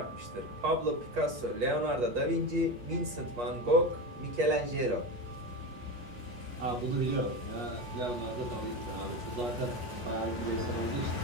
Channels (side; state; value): left; late; 8.3 ms